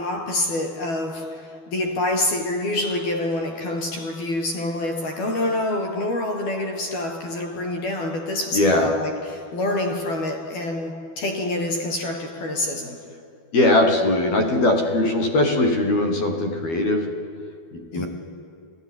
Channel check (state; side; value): late; right; 12 ms